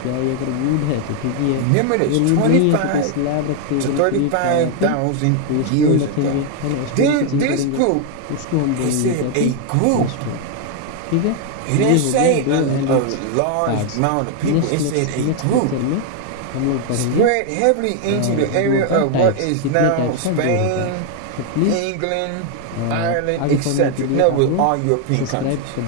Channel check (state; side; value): different; both; correlation 0.00